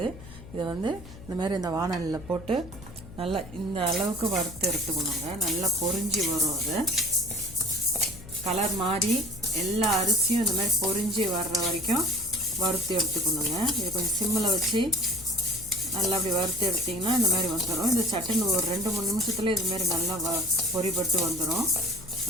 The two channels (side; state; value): left; noise; hum, 16 dB below the sound